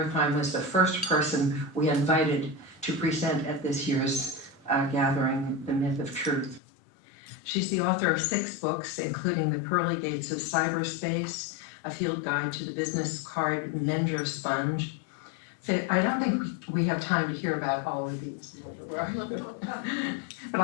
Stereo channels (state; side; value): drops out; right; at 6.6 s